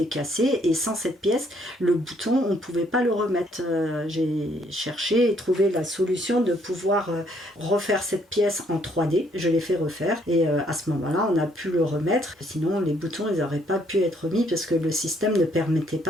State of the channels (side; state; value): both; normal; correlation 0.67